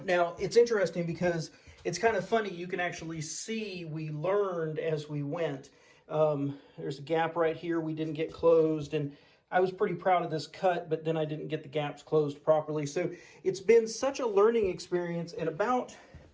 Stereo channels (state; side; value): identical; both; correlation 1.00